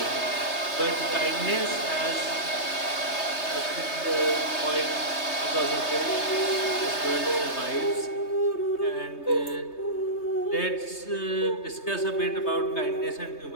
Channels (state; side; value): late; right; 3.2 ms